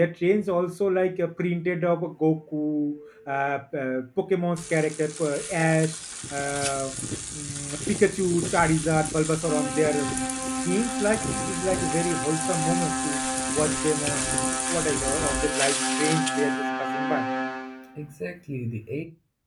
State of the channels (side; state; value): both; identical; correlation 1.00